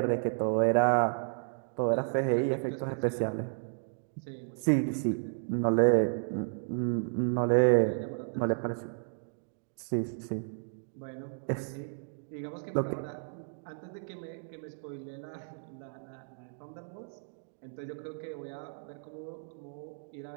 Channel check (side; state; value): left; silent; digital silence